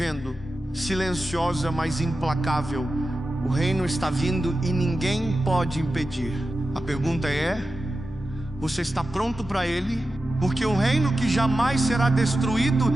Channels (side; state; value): both; normal; correlation 0.93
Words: silenciosa, mas implacável. O reino está vindo e ninguém pode impedir. A pergunta é: você está pronto para ele? Porque o reino que jamais será destruído